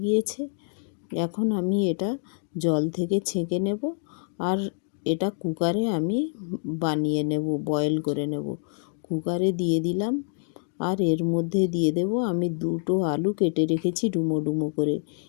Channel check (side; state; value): right; silent; 60 dB below the other